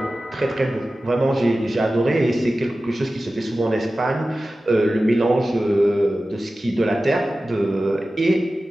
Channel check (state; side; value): normal; both; correlation 0.95